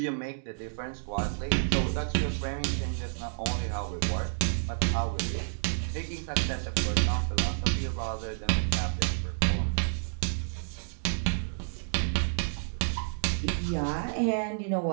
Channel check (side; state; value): left; silent; digital silence